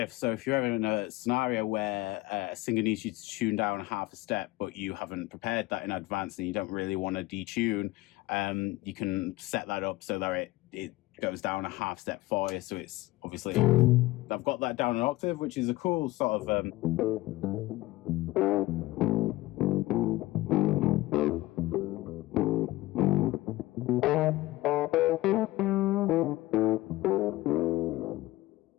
So if you're ever in a scenario where a singer needs you to tune down half a step, but you haven't prepared that in advance and you don't really want to detune, you can set that up so that it goes down a half step for you. So it's obviously, I've got that down an octave, which is a cool sort of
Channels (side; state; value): right; quieter; 18.5 dB